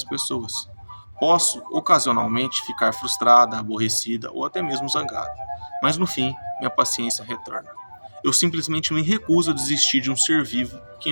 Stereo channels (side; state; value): both; inverted; correlation -1.00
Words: pessoas. Posso, ocasionalmente, ficar frustrada, aborrecida ou até mesmo zangada, mas no fim, minha paciência retorna. Eu simplesmente me recuso a desistir de um ser vivo que